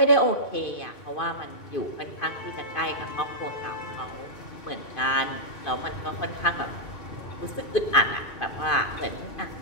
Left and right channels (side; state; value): right; late; 2.5 ms